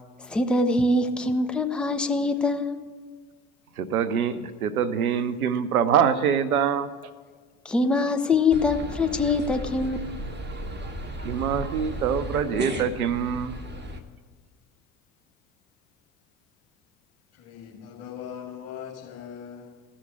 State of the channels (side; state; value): both; normal; correlation 0.39